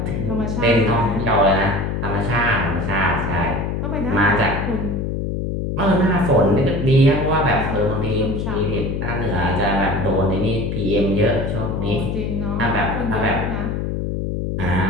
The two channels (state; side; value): noise; left; hum, 2 dB below the sound